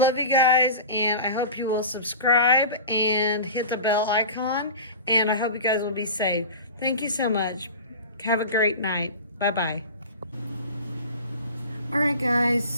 you guys, and I hope you will subscribe and hit the bell icon, and I hope you guys will be safe. Thank you so much. Have a great night. Bye-bye. All right, guys,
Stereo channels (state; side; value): inverted; both; correlation -0.34